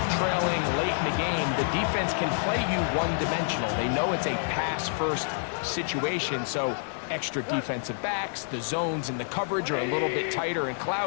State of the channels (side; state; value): right; silent; digital silence